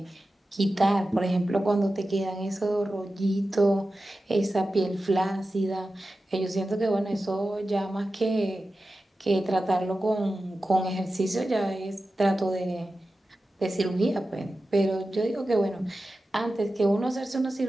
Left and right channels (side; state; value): both; normal; correlation 0.93